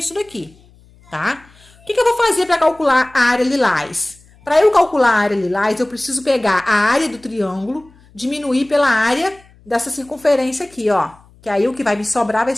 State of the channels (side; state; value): left; noise; hum, 28 dB below the sound